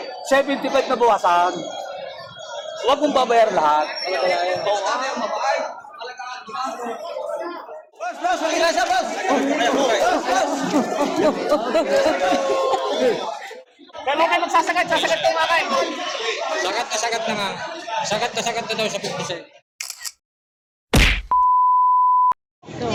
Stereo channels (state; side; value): identical; both; correlation 1.00